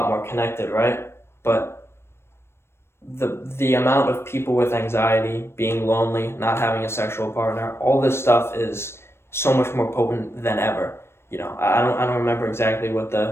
more connected, right? But the amount of people with anxiety, being lonely, not having a sexual partner, all this stuff is so much more potent than ever. I don't remember exactly what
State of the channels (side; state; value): right; late; 0.12 ms